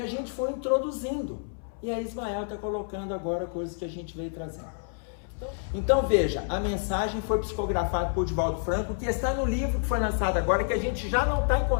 a gente foi introduzindo. E aí Ismael está colocando agora coisas que a gente veio trazendo. Então veja, a mensagem foi psicografada por Divaldo Franco, que está no livro que foi lançado agora, que a gente já não está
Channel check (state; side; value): silent; right; 59 dB below the other